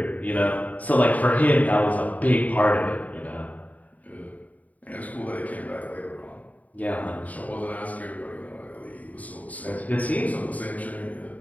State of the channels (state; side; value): late; right; 0.073 ms